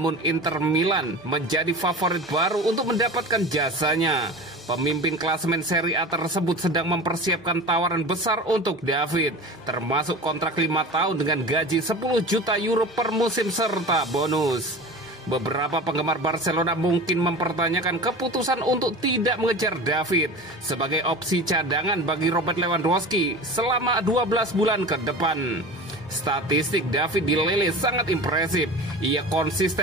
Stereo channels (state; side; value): normal; both; correlation 0.34